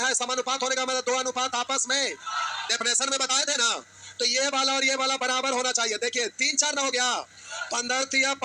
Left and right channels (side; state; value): both; identical; correlation 1.00